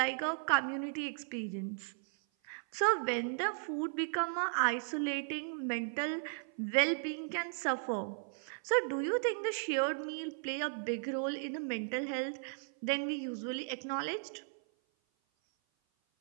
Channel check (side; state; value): left; silent; 54 dB below the other